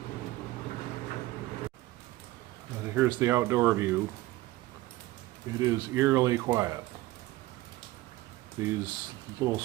And here's the outdoor view. It is eerily quiet. These little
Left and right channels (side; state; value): left; quieter; 18.0 dB